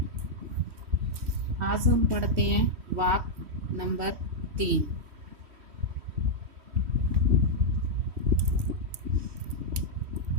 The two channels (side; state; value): left; late; 3.1 ms